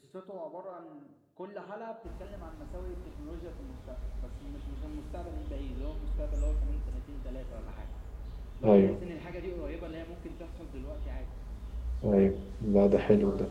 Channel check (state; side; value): identical; both; correlation 1.00